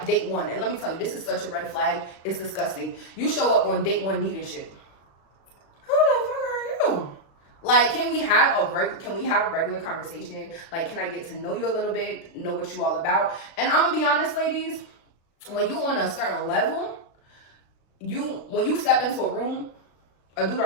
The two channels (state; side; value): late; right; 36 ms